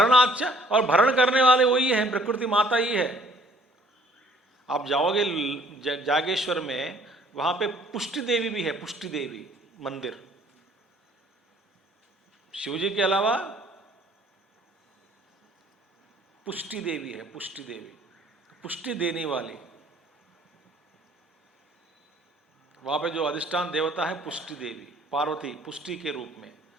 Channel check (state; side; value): normal; both; correlation 0.58